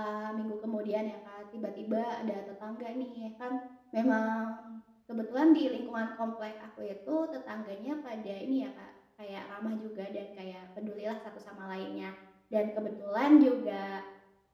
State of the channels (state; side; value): identical; both; correlation 1.00